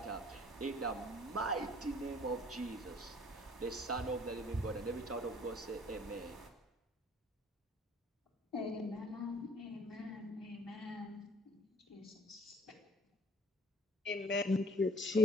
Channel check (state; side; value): normal; both; correlation 0.56